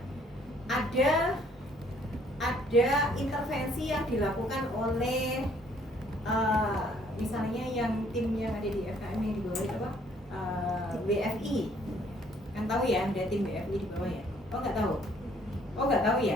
Ada intervensi yang dilakukan oleh misalnya yang tim yang ada di FKM yang di bawah itu apa? BFI. Kan tahu ya, ada tim BFI di bawah ya? Oh nggak tahu? Oh nggak tahu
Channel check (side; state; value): both; normal; correlation 0.62